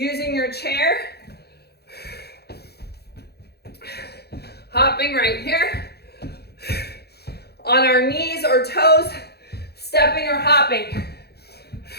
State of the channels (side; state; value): right; late; 0.47 ms